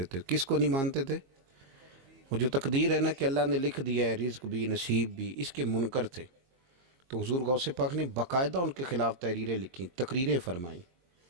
تھے۔ کس کو نہیں مانتے تھے؟ وہ جو تقدیر ہے نا کہ اللہ نے لکھ دیا ہے، رزق بھی نصیب بھی، اس کے منکر تھے۔ تو حضور غوث پاک نے باقاعدہ ان کے خلاف تحریریں لکھیں، تقریریں فرمائیں۔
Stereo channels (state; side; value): late; left; 22 ms